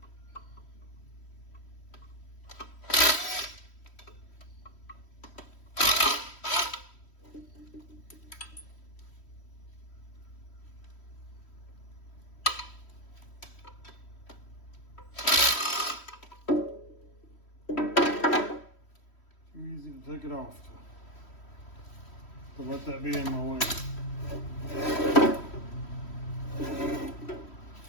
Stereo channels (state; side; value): late; right; 3.1 ms